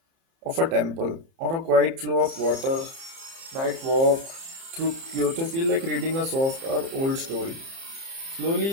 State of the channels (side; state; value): left; late; 30 ms